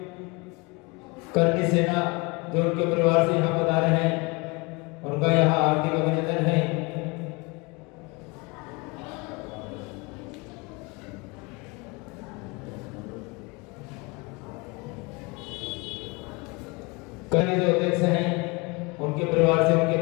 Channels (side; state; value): right; quieter; 27.1 dB